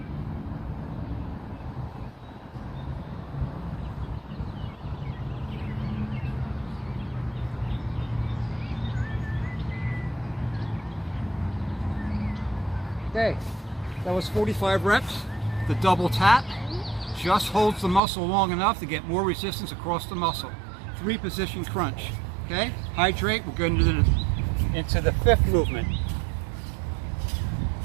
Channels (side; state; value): left; drops out; at 18.0 s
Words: Okay, that was 45 reps. The double tap just holds the muscle long enough to get more resistance across the muscle. 3 position crunch. Okay, hydrate. We're going into the 5th movement.